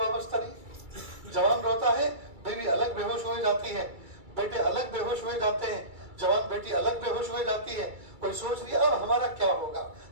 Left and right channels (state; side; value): late; left; 2.3 ms